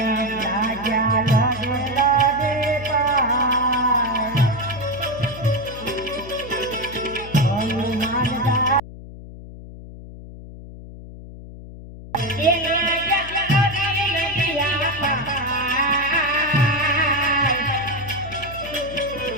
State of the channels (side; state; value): left; noise; hum, 14 dB below the sound